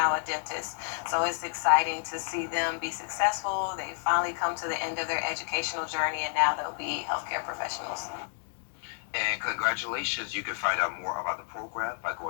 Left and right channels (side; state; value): right; silent; digital silence